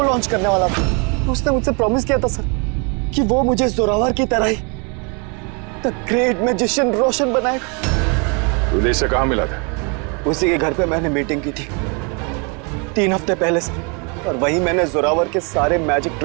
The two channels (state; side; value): quieter; left; 33.9 dB